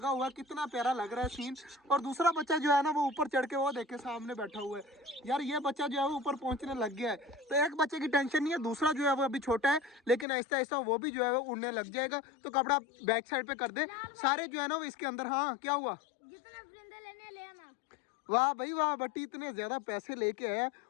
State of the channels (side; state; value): right; drops out; at 10.2 s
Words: हुआ है, कितना प्यारा लग रहा है सीन। और दूसरा बच्चा जो है ना वो ऊपर चढ़ के वो देखे सामने बैठा हुआ है। यार ये बच्चा जो है वो ऊपर पहुंचने लग गया है, तो एक बच्चे की टेंशन नहीं है, दूसरा जो है वो अभी छोटा है लेकिन ऐसा ऐसा वो भी जो है वो उड़ने लग जाएगा। तो कपड़ा बैक साइड पे कर दे सारे जो है ना वो इसके अंदर। हाँ क्या हुआ? ले आना। वाह भाई वाह, बट्टी इतने ज्यादा पैसे लेके आया।